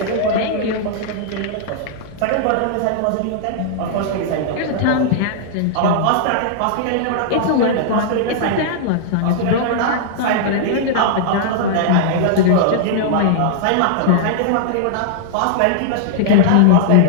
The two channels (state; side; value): different; both; correlation -0.01